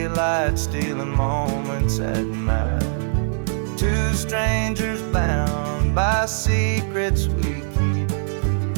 stealing moments at night. Two strangers bound by secrets we keep,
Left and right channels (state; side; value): silent; left; digital silence